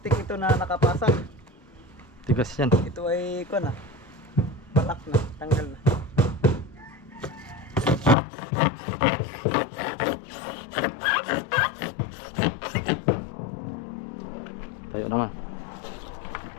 ito na nakapasok, Tigas yan. ito ay ko na. Palak na, tanggal na. Tayo naman.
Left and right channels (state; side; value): drops out; right; at 8.2 s